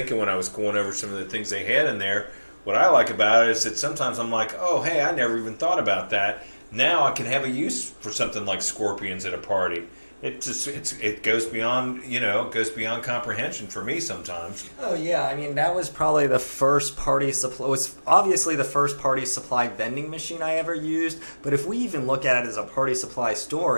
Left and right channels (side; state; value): both; inverted; correlation -1.00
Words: when I was going over some of the things they had in there. What I like about it is that sometimes I'm like, oh, hey, I never even thought about that. Now I can have a use for something like scorpions at a party. It goes beyond, goes beyond comprehension for me sometimes. Oh yeah, I mean that was probably the first party supply. It was obviously the first party supply vending machine I ever used. But if we even look at it as a party supply